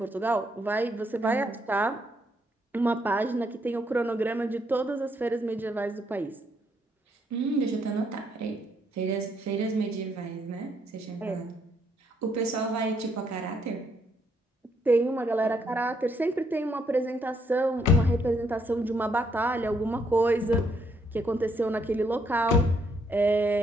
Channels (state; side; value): normal; both; correlation 0.73